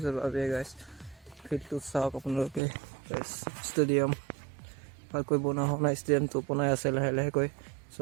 abe guys. ফিল্ডটো চাওক আপোনালোকে guys. Stadium ভালকৈ বনোৱা হোৱা নাই, ষ্টেডিয়ামটো বনাই আছে লাহে লাহেকৈ. So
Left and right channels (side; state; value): left; drops out; at 2.6 s